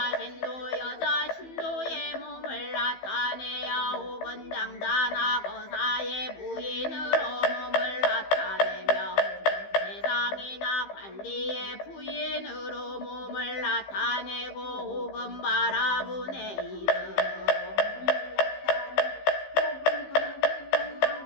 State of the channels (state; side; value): late; right; 15 ms